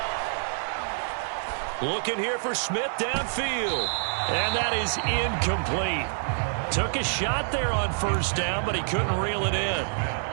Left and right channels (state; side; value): silent; left; digital silence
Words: Looking here for Smith downfield. And that is incomplete. Took a shot there on first down, but he couldn't reel it in.